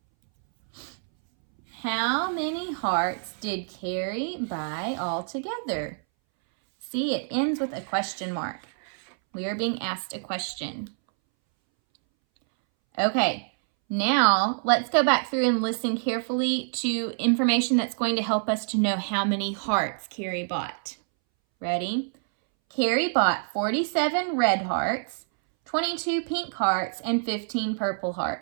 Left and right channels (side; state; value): left; silent; 60 dB below the other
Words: How many hearts did Carrie buy altogether? See, it ends with a question mark. We are being asked a question. Okay, now let's go back through and listen carefully to information that's going to help us to know how many hearts Carrie bought. Ready? Carrie bought 47 red hearts, 22 pink hearts, and 15 purple